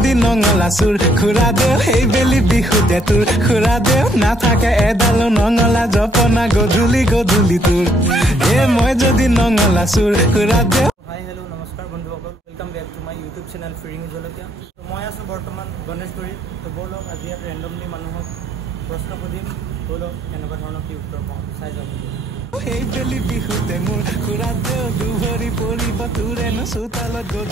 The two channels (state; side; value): normal; both; correlation 0.69